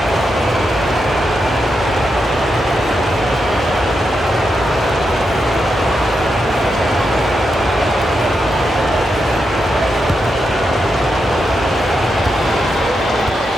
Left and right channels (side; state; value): both; normal; correlation 0.85